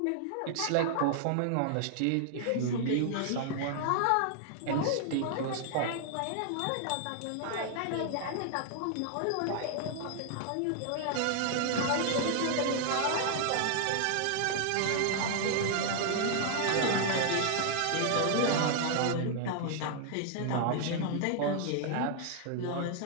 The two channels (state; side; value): different; both; correlation 0.00